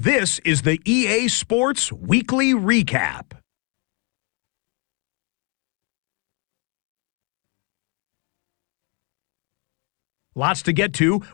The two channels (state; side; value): quieter; right; 34.9 dB